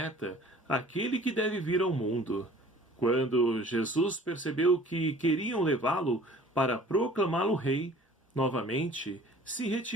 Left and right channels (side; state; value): both; normal; correlation 0.49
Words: aquele que deve vir ao mundo. Quando Jesus percebeu que queriam levá-lo para proclamá-lo rei, novamente se